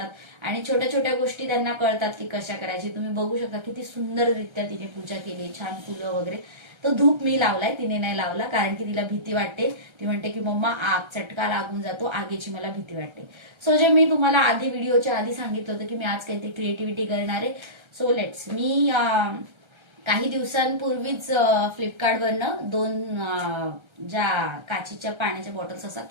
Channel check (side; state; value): left; late; 1.3 ms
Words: आणि छोट्या छोट्या गोष्टी त्यांना कळतात की कशा करायची. तुम्ही बघू शकता किती सुंदररित्या तिने पूजा केली, छान फुलं वगैरे. तो धूप मी लावलाय, तिने नाही लावला, कारण की तिला भीती वाटते. ती म्हणते की मम्मा आग चटका लागून जातो, आगीची मला भीती वाटते. सो जे मी तुम्हाला आधी व्हिडिओच्या आधी सांगितलं होतं की मी आज काहीतरी क्रिएटिव्हिटी करणार आहे. सो लेट्स मी काही दिवसांपूर्वीच फ्लिपकार्टवरनं 2 ज्या काचीच्या पाण्याच्या बॉटल्स असतात